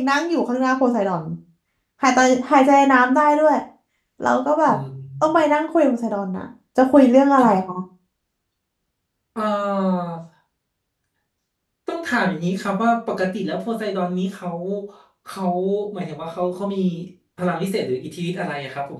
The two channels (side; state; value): both; identical; correlation 1.00